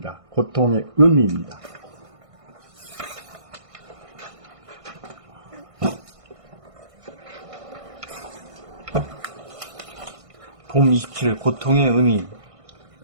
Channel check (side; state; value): left; late; 1.6 ms